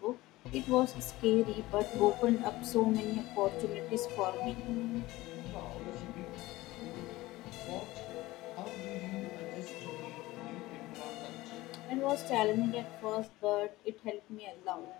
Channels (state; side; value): quieter; right; 18.6 dB